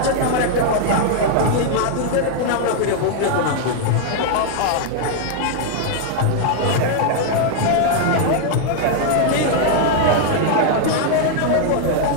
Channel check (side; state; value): both; different; correlation 0.00